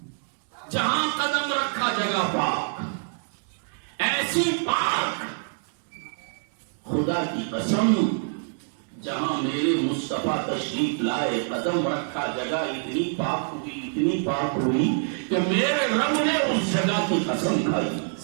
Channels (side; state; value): left; silent; digital silence